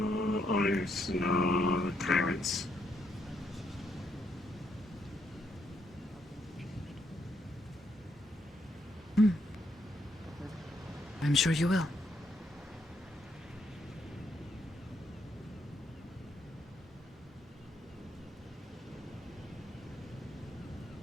owners, no tyrants. I'm sure you will.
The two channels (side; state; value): both; normal; correlation 0.76